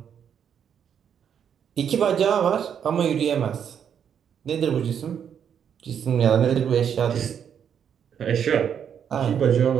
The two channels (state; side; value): quieter; left; 8.2 dB